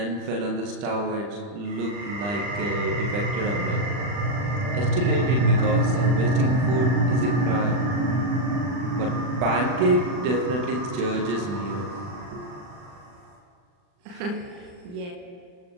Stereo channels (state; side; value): late; left; 40 ms